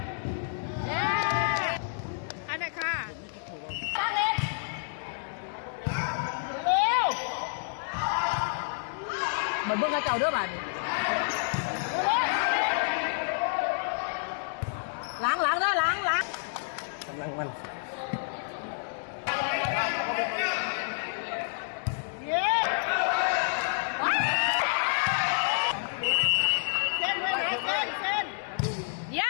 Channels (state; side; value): silent; right; digital silence